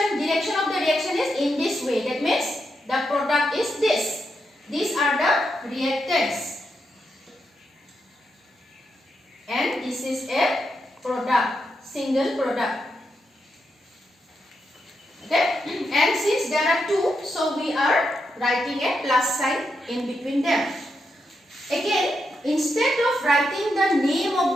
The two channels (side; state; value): both; normal; correlation 0.84